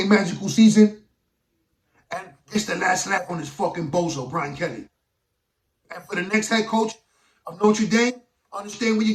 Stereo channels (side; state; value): both; identical; correlation 1.00